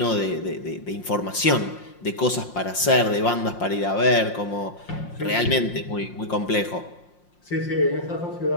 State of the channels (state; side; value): late; right; 5.6 ms